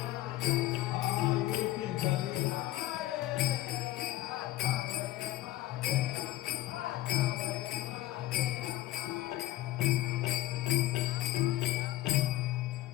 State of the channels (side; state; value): right; quieter; 15.3 dB